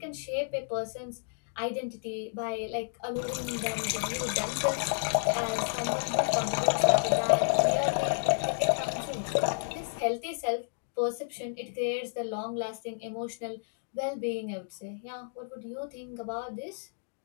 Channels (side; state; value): right; silent; digital silence